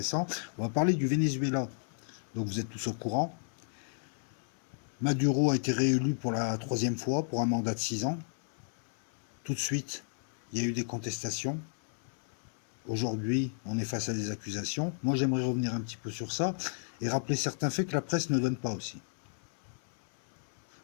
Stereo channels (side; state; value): right; silent; 56 dB below the other